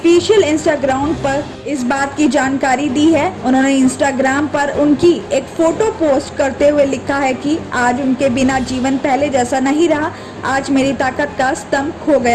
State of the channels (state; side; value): identical; both; correlation 1.00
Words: इंस्टाग्राम पर इस बात की जानकारी दी है। उन्होंने इंस्टाग्राम पर उनकी एक फोटो पोस्ट करते हुए लिखा है कि आज उनके बिना जीवन पहले जैसा नहीं रहा, आज मेरी ताकत का स्तंभ खो